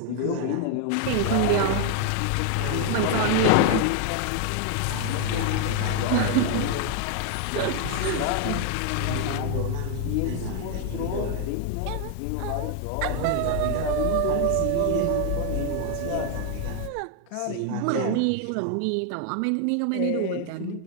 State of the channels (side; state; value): both; different; correlation 0.00